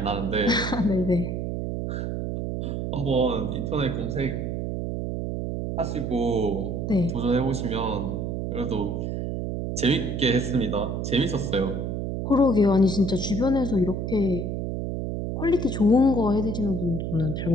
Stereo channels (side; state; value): right; noise; hum, 3 dB below the sound